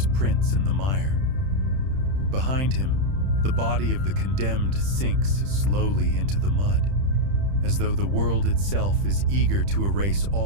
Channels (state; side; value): late; left; 30 ms